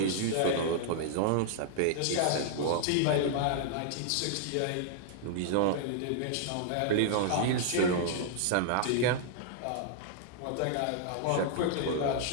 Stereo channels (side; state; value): both; different; correlation -0.01